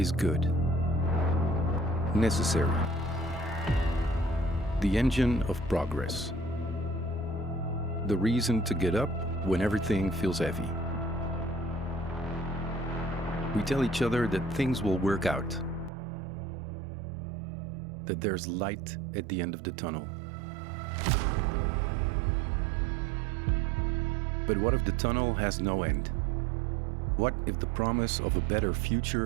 good, necessary, the engine of progress, the reason to get up when everything feels heavy. We tell each other that things will work out, that there's light at the end of the tunnel. But what if the tunnel has no end? What if the promise of a better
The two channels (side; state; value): left; drops out; at 15.9 s